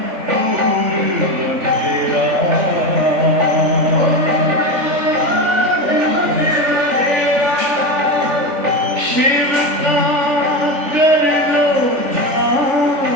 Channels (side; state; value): left; late; 3.4 ms